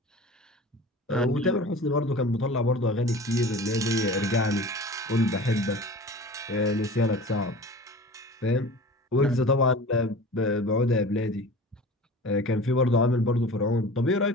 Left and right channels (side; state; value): both; normal; correlation 0.39